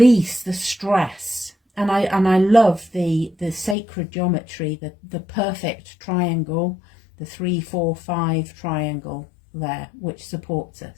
the stress. And I love the sacred geometry, the perfect triangle, the 3-4-5 triangle there, which supports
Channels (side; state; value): right; drops out; at 3.8 s